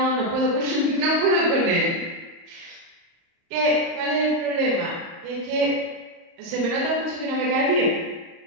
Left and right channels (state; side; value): late; left; 30 ms